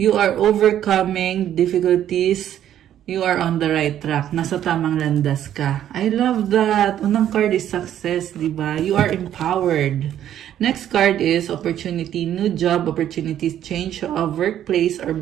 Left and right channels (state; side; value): quieter; left; 11.0 dB